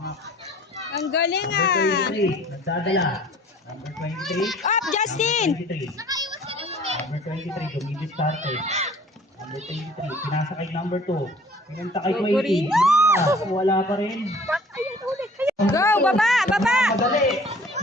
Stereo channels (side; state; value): both; normal; correlation 0.51